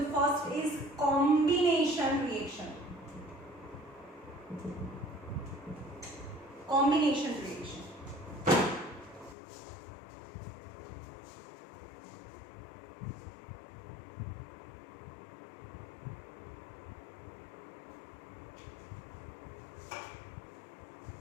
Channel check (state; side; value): drops out; right; at 9.3 s